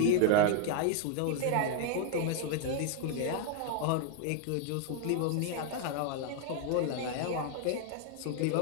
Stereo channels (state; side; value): different; both; correlation 0.00